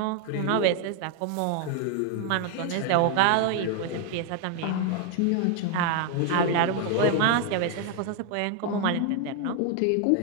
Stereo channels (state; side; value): different; both; correlation 0.01